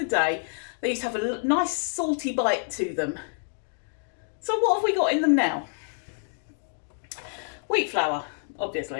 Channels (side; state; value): right; silent; digital silence